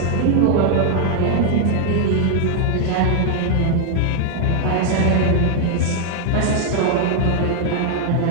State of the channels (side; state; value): both; different; correlation 0.00